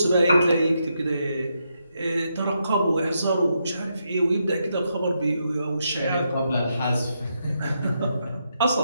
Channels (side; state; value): both; inverted; correlation -0.81